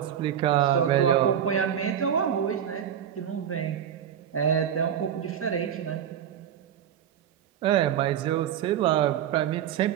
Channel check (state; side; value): quieter; left; 9.5 dB